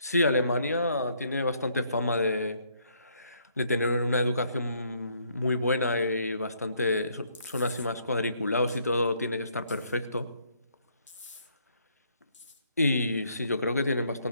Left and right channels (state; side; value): inverted; both; correlation -0.68